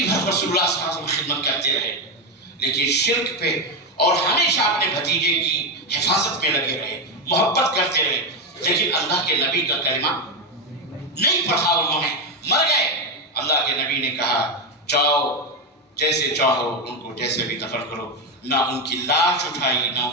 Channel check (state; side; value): normal; both; correlation 0.09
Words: بھر رسول اللہ صلی اللہ علیہ وسلم خدمت کرتے رہے، لیکن شرک پہ اور ہمیشہ اپنے بھتیجے کی حفاظت میں لگے رہے، محبت کرتے رہے، لیکن اللہ کے نبی کا کلمہ نہیں پڑھا انہوں نے، مر گئے. اللہ کے نبی نے کہا جاؤ جیسے چاہو ان کو جیسے بھی دفن کرو. نہ ان کی لاش اٹھائی، نہ